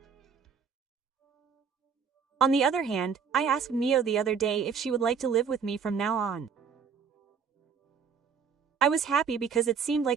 On the other hand, I asked Mio the other day if she would like to live with me from now on. I was happy because it seemed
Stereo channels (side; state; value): left; quieter; 6.4 dB